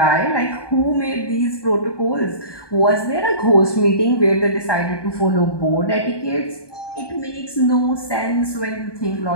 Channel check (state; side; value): late; right; 1.2 ms